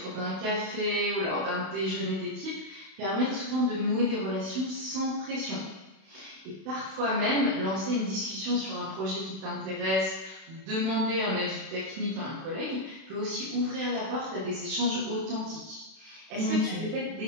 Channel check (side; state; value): left; late; 32 ms